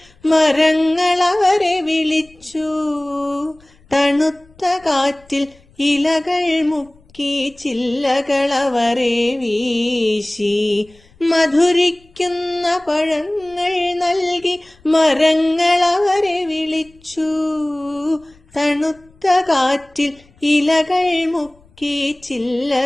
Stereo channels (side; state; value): left; noise; rumble, 30 dB below the sound